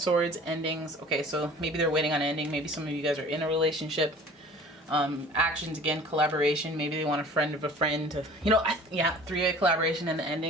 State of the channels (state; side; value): normal; both; correlation 0.46